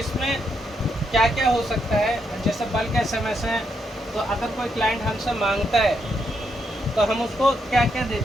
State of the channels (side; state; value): both; normal; correlation 0.79